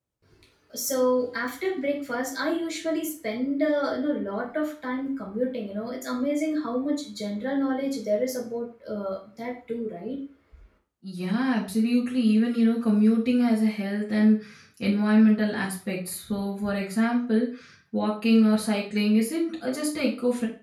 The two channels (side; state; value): both; identical; correlation 1.00